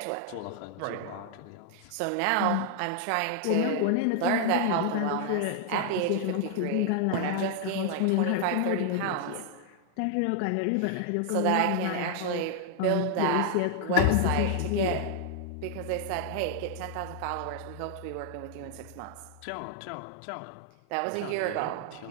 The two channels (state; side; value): different; both; correlation 0.00